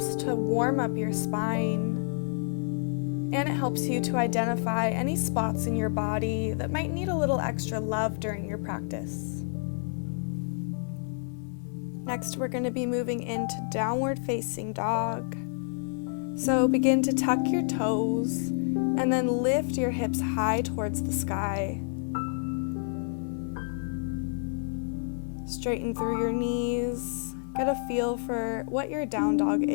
to warm up your spine, and it helps you to identify any spots in your body that might need a little extra love during your practice. Next, we're going to be moving into downward facing dog. So begin to tuck your toes and then lift your hips high towards the sky. Straighten through your knees. Get a feel for what your down dog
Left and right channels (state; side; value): silent; right; digital silence